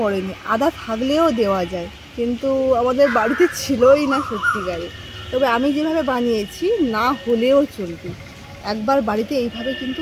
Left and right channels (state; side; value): identical; both; correlation 1.00